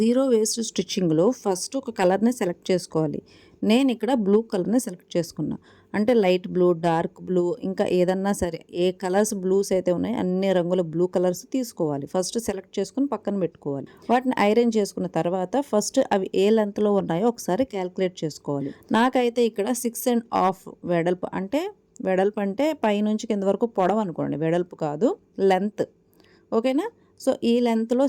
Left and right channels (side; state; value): both; identical; correlation 1.00